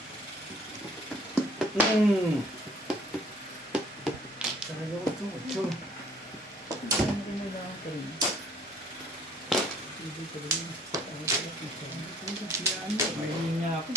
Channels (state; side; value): normal; both; correlation 0.57